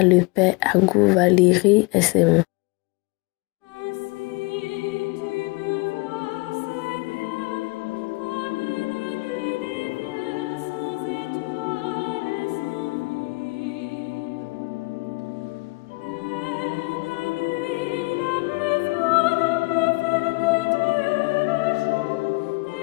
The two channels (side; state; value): right; quieter; 26.0 dB